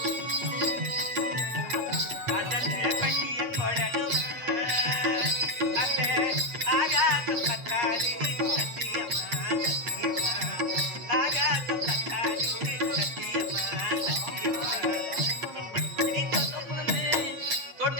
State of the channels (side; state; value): left; late; 8.4 ms